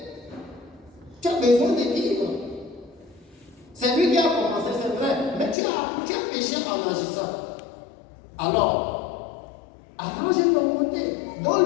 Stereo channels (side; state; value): right; drops out; at 5.6 s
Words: Tu as besoin de vivre. C'est lui qui a commencé, c'est vrai. Mais tu as péché en agissant. Alors, arrange ton côté.